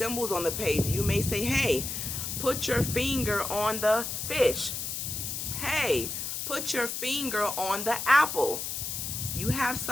on the page. You may say, hey, put your finger on the fish. Hey, put your finger on the apple. You have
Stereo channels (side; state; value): left; noise; hiss, 4 dB below the sound